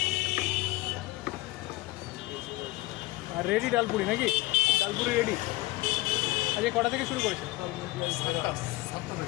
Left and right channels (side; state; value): right; quieter; 19.5 dB